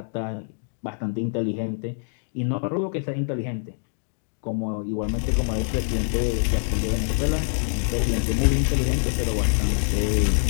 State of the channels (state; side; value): silent; right; digital silence